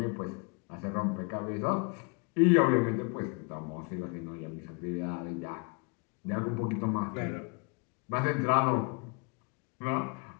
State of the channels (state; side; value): quieter; right; 34.4 dB